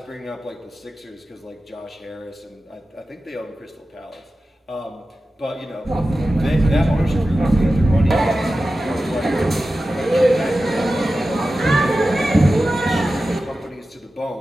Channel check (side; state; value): both; normal; correlation 0.94